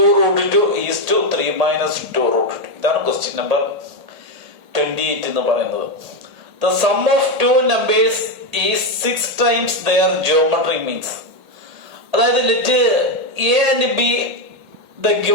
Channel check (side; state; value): left; late; 1.8 ms